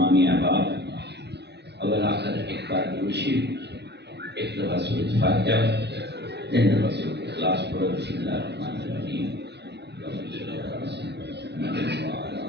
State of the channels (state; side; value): late; left; 0.49 ms